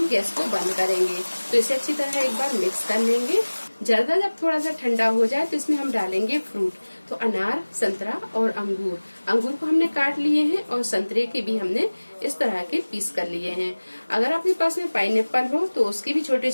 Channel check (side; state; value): both; inverted; correlation -1.00